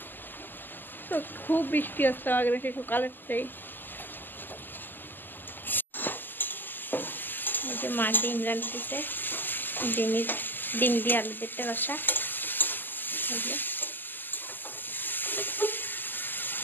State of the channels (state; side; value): late; right; 0.090 ms